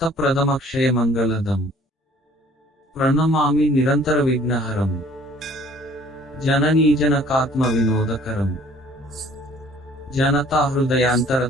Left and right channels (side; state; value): both; normal; correlation 0.55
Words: ప్రథమక్షయ మంగళదం. ప్రణమామి నిరంతర విఘ్నహరం జననీజనకాత్మ వినోదకరం జనతా